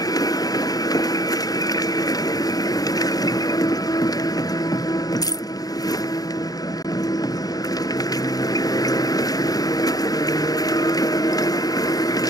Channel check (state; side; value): late; right; 0.18 ms